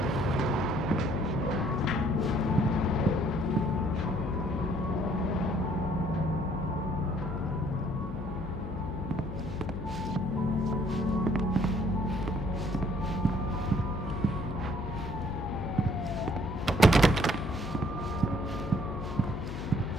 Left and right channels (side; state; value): left; noise; hum, 8 dB below the sound